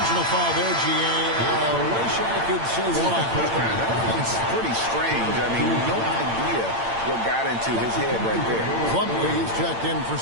foul there, G.A. Wish I could say why. That's pretty strange. I mean, no idea what got into his head right there. Plumlee, he's checked in for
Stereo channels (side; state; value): left; late; 8.8 ms